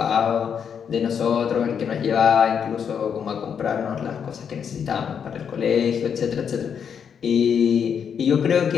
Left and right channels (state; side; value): quieter; right; 7.4 dB